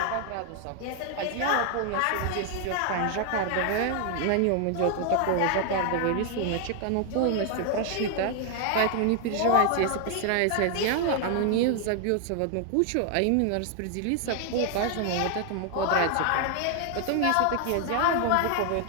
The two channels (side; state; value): both; different; correlation 0.00